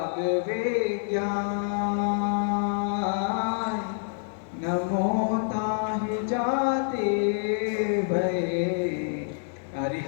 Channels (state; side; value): silent; right; digital silence